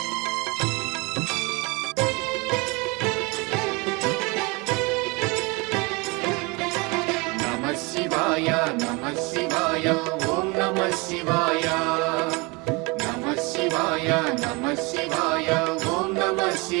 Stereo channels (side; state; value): left; quieter; 27.5 dB